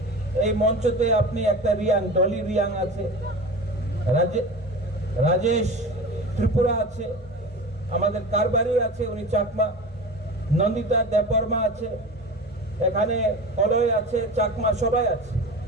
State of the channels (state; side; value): normal; both; correlation 0.32